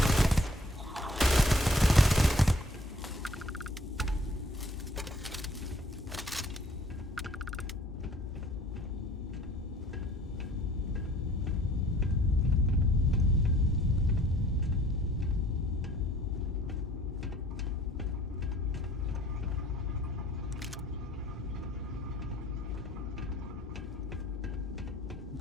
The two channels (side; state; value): both; normal; correlation 0.57